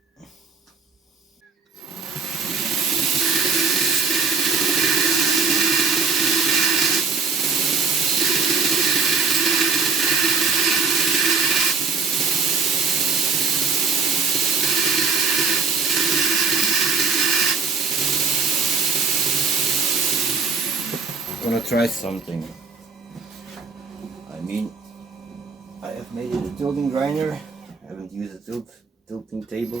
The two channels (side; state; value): left; quieter; 5.0 dB